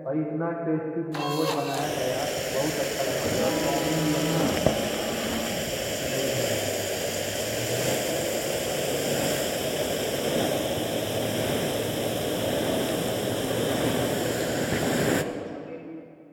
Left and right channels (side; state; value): both; identical; correlation 1.00